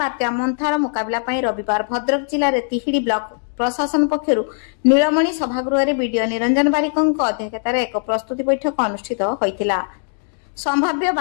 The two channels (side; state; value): right; silent; 66 dB below the other